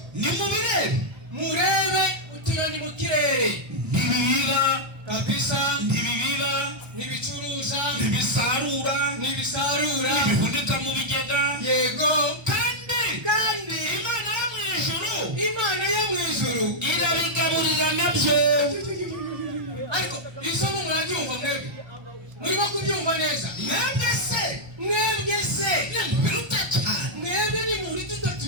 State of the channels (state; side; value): late; left; 1.2 ms